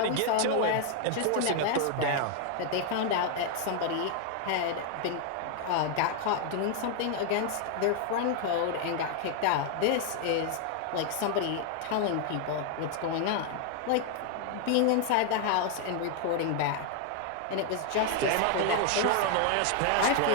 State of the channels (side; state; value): both; different; correlation 0.00